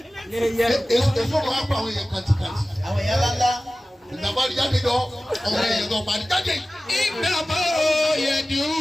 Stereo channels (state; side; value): normal; both; correlation 0.96